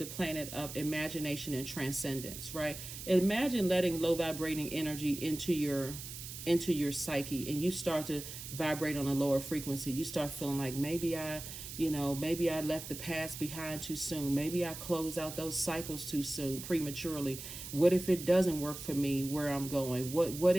planet of imagination and transcendence, right? Imagine letting low vibrating energy into your psyche, and you start to vibrate on a lower frequency. You start feeling like maybe I left the past behind too soon. Maybe I closed out those cycles too soon, prematurely. What if it doesn't work for me where I'm going? What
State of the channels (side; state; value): right; noise; hiss, 10 dB below the sound